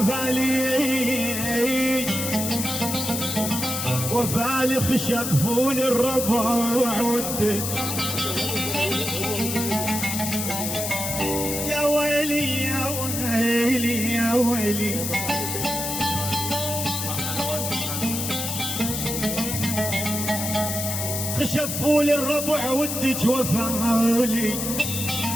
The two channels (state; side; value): noise; left; hiss, 3 dB below the sound